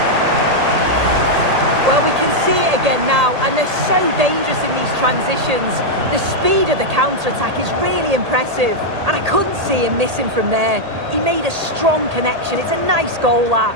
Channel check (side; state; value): left; late; 1.8 ms